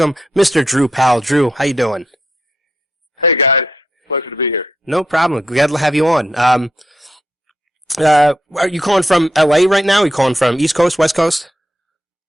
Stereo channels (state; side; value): normal; both; correlation 0.81